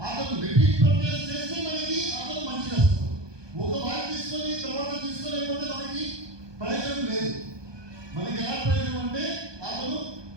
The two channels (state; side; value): late; left; 1.2 ms